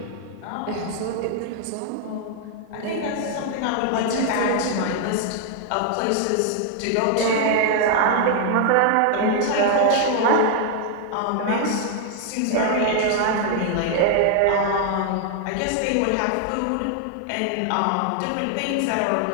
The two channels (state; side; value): different; both; correlation 0.00